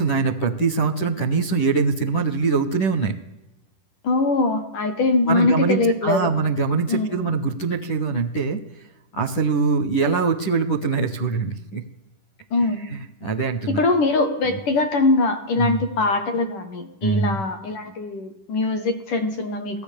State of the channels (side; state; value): right; late; 10 ms